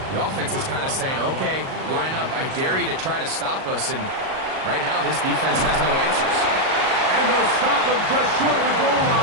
the offense is kind of saying, okay, line up. I dare you to try to stop us. And right now, this defense has no answers. And they'll stop him just short of the goal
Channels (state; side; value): late; left; 38 ms